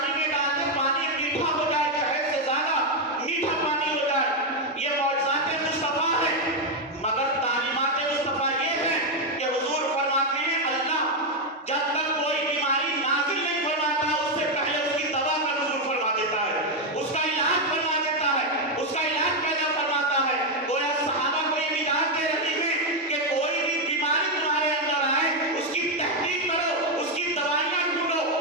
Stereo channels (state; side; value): normal; both; correlation 0.04